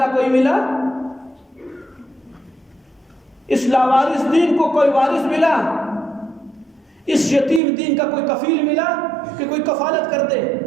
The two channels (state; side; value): drops out; left; at 7.6 s